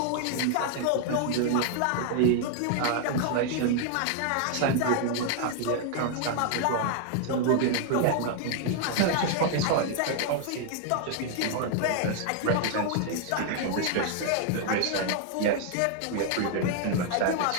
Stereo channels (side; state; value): both; different; correlation 0.00